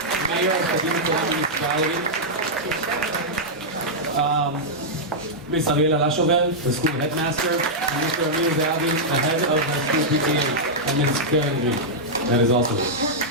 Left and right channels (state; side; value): normal; both; correlation -0.07